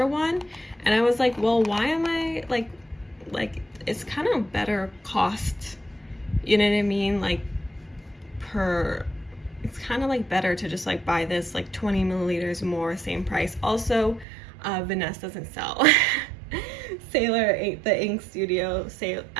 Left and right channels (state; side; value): drops out; left; at 14.2 s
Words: one, and I was like, well, why am I like it's kind of better cost, you know what I mean, like it's kind of like better to just like buy this like 20 milliliters more, same price. Also, Vanessa doesn't sell Sailor the Ink Studio.